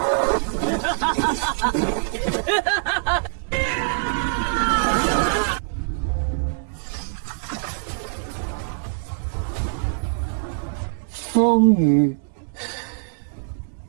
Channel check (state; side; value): silent; left; 63 dB below the other